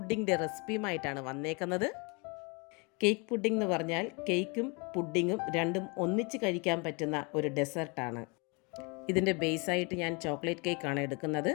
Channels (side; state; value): right; quieter; 30.9 dB